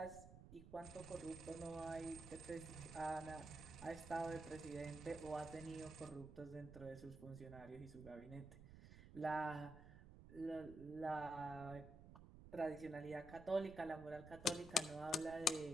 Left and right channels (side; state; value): right; noise; rumble, 14 dB below the sound